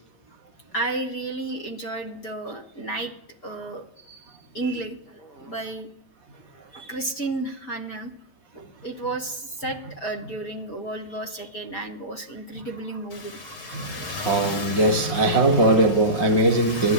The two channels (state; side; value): late; right; 5.6 ms